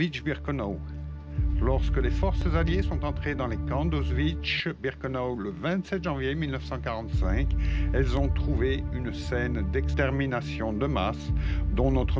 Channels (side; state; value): both; identical; correlation 1.00